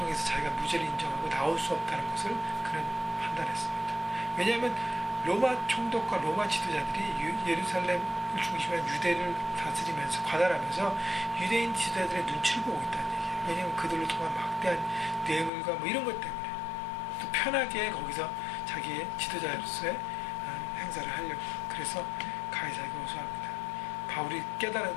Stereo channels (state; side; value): drops out; right; at 15.5 s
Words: 자기가 무죄를 인정하고 나올 수 없다는 것을 그는 판단했습니다. 왜냐하면 로마 총독과 로마 지도자들이 예루살렘을 중심으로 유대를 다스리면서 관할하면서 유대인 지도자들의 눈치를 보고 있다는 얘기예요. 왜냐하면 그들로 통한 막대한 뇌물과 이런 것 때문에 또 편하게 거기서 자기의 지도자로서의 행사를 하려고, 그래서 가이사에게 호소합니다. 바울이 깨달은